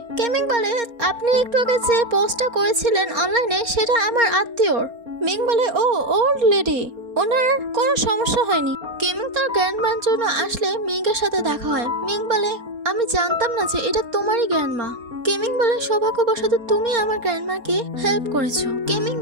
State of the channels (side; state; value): left; late; 4.3 ms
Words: কেমিং বলে আপনি একটু আগে যে পোস্টটা করেছিলেন অনলাইনে সেটা আমার আত্মীয়র। মিং বলে ও ওল্ড লেডি, ওনার কোনো সমস্যা হয়নি। কেমিং তার গ্র্যান্ডমার জন্য আসলে মিংয়ের সাথে দেখা হয়। মিং বলে আমি জানতাম না যে এটা তোমারই গ্র্যান্ডমা। কেমিং বলে সৌভাগ্যবশত তুমি আমার গ্র্যান্ডমাকে হেল্প করেছো। কেমিং